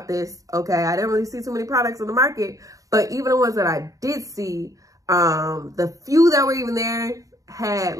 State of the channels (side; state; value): left; late; 0.16 ms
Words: this. Okay, I didn't really see too many products on the market, but even the ones that I did see, the few that were even there had